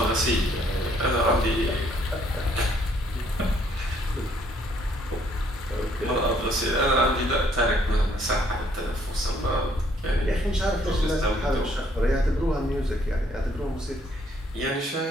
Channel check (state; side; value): normal; both; correlation 0.66